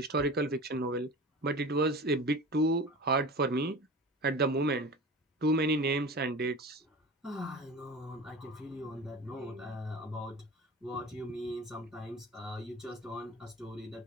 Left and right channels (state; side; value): normal; both; correlation 0.35